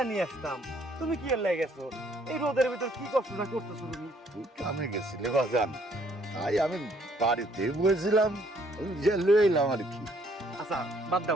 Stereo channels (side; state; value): both; normal; correlation 0.65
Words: নিয়ে আসতাম, তুমি কি এর লাগে গেছো? এই রোদের ভিতর কি কষ্টটা করতেছো তুমি? তুই কামে গেছিলে বাজান, তাই আমি বাড়িতে বসেছিলাম, যে লয়ে এলাম আর কি। আচ্ছা বাদ